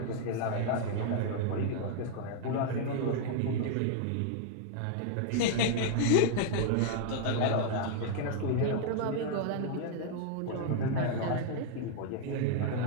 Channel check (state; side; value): different; both; correlation 0.00